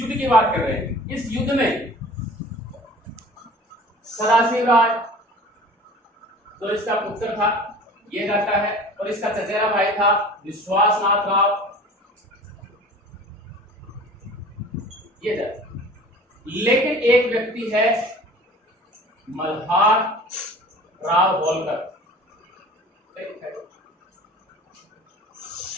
की बात कर रहे हैं। इस युद्ध में सदाशिव राय तो इसका पुत्र था, ये रहता है, और इसका चचेरा भाई था विश्वासनाथ राव, ये रहता। लेकिन एक व्यक्ति है मल्हार राव होलकर,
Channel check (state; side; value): normal; both; correlation 0.43